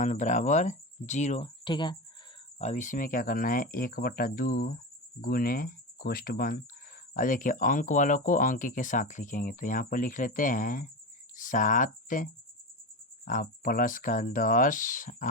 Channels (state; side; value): normal; both; correlation 0.22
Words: बराबर 0। ठीक है, अब इसमें क्या करना है, 1/2 गुने कोष्ठ बंद। अब देखिए अंक वालों को अंक के साथ लिखेंगे, तो यहाँ पर लिख लेते हैं 7 आप प्लस का 10